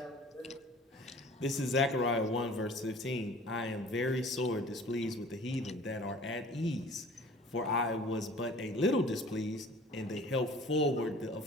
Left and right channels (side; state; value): both; normal; correlation 0.47